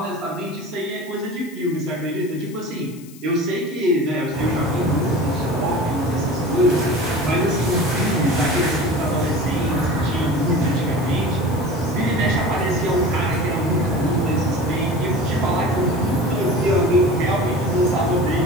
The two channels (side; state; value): left; noise; hiss, 22 dB below the sound